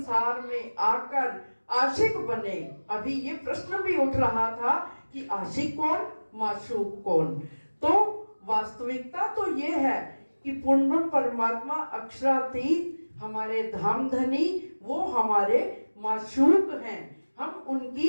में आकर आशिक बने। अभी ये प्रश्न भी उठ रहा था कि आशिक कौन, माशूक कौन। तो वास्तविकता तो ये है कि पूर्ण परमात्मा अक्षरातीत हमारे धामधनी, वो हमारे माशूक हैं, हम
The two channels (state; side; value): inverted; both; correlation -1.00